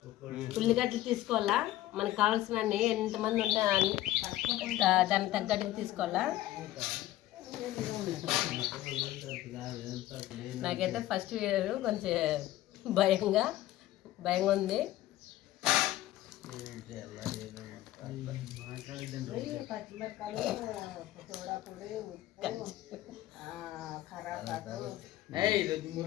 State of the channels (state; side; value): quieter; right; 15.1 dB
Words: ఉల్లిగడ్డలు తీసుకోవాలా, మనకు కావాల్సినన్ని ఎంతమంది ఉంటే దానికి తగ్గట్టుగా తీసుకోవాలా. నాకైతే ఫస్ట్ వీడియో కొంచెం భయంగా ఉంది.